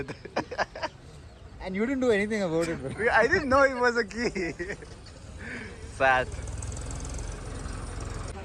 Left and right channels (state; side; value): identical; both; correlation 1.00